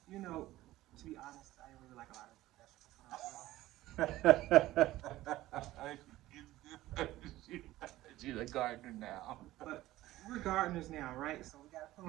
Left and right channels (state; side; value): quieter; left; 16.1 dB